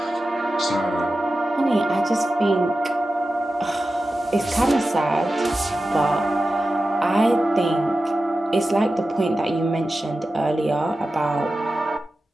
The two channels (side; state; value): both; normal; correlation 0.93